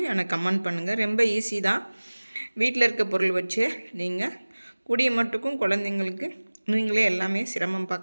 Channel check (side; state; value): both; inverted; correlation -1.00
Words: எனக்கு கமெண்ட் பண்ணுங்கள். ரொம்ப ஈஸி தான். வீட்டில் இருக்க பொருள் வச்சு நீங்கள் கூடிய மட்டுக்கும் குழந்தைங்களுக்கு நீங்களே எல்லாமே சிரமம்